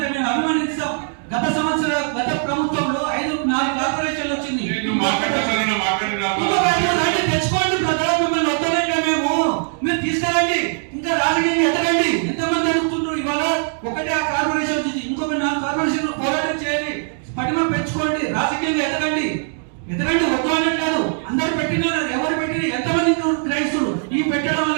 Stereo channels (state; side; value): silent; left; 60 dB below the other